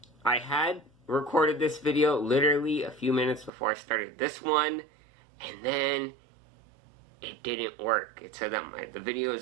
I had recorded this video literally a few minutes before I started this one, and then it didn't work. It said that the video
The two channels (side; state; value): left; drops out; at 3.5 s